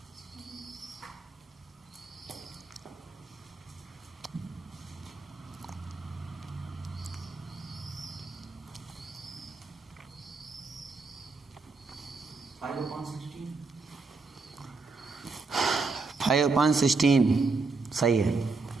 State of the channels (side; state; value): left; quieter; 4.1 dB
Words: फाइव अपॉन 16 सही है।